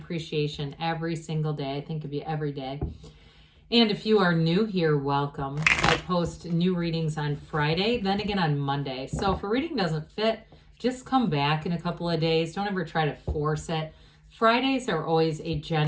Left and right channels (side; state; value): both; identical; correlation 1.00